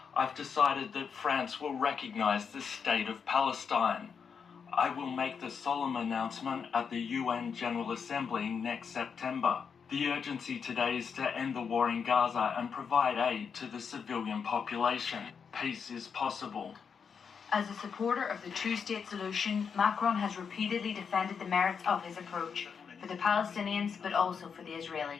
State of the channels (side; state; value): right; quieter; 6.4 dB